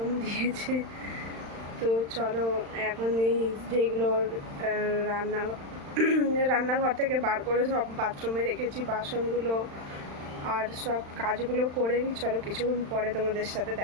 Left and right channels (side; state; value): left; late; 35 ms